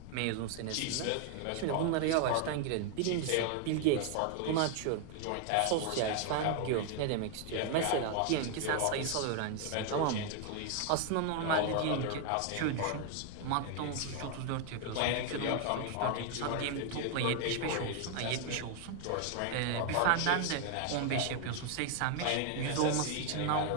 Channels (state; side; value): different; both; correlation 0.00